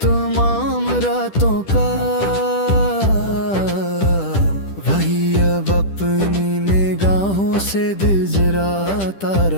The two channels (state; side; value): late; right; 10 ms